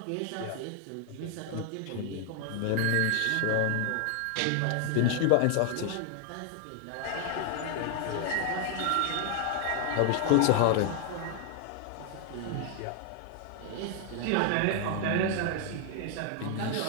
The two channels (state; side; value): different; both; correlation 0.00